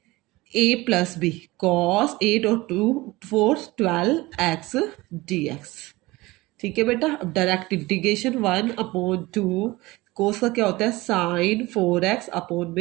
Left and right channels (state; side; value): quieter; left; 20.6 dB